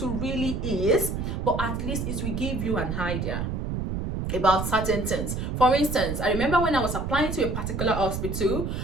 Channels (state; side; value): noise; right; rumble, 3 dB below the sound